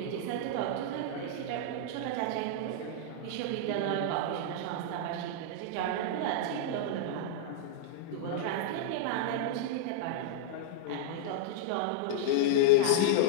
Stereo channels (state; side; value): different; both; correlation -0.01